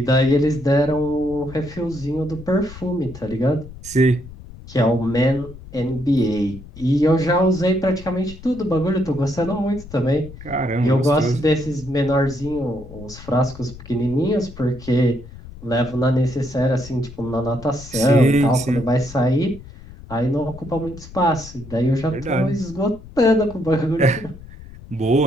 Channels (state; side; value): noise; left; rumble, 16 dB below the sound